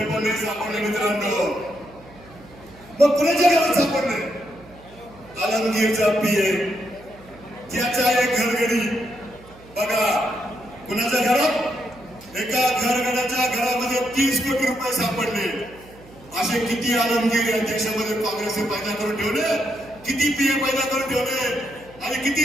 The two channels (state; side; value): noise; right; hum, 23 dB below the sound